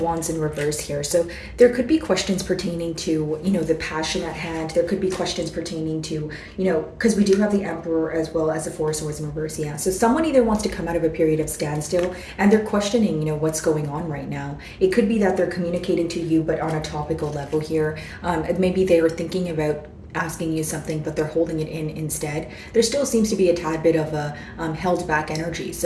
in reverse here. So there could be questions pertaining to, the passion at hand. There could be questions pertaining to, because we do have the Emperor as well as the Four of Swords in reverse. Yeah. So someone either wants to come out of a period of standstill and they're questioning, what's going on right now. It could be that they're communicating to you, but on a topical level here. Maybe they are thinking about asking you something, but they're holding it in instead. There still seems to be a tad bit of a held back energy.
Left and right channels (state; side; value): identical; both; correlation 1.00